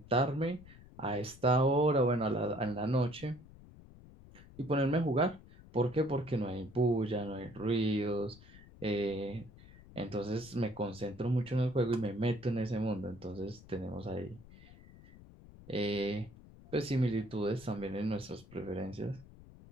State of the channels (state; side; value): noise; left; rumble, 20 dB below the sound